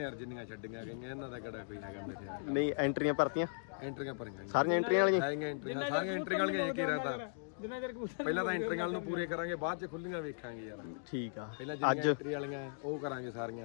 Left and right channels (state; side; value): silent; right; digital silence